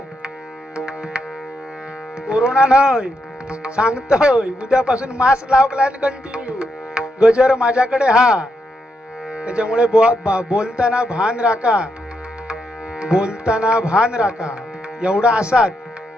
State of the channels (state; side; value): normal; both; correlation 0.81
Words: कोरोना नाही सांगतोय, उद्यापासून मास्क लावलाय कंटिन्यू. गजर माझ्याकडे हा. त्याच्यामुळे बोलताना भान राखा, बोलताना भान राखा. एवढा असात